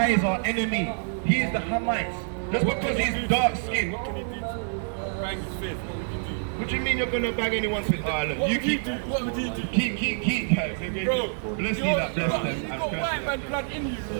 is our enemy. He is the Hamites. Just because he's dark skinned. this, what would you do? What do you mean you're gonna bag anyone's with? Oh, look, What you would you keep. do? What would you do? Keep, guys. Bro, Let's see that bless them. you got white man blood in you,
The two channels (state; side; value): silent; left; 60 dB below the other